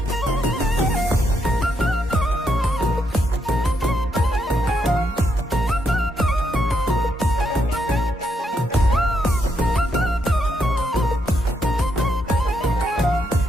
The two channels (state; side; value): normal; both; correlation 0.78